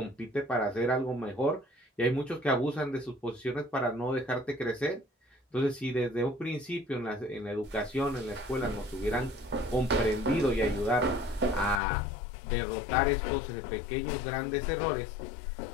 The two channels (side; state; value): right; drops out; at 11.8 s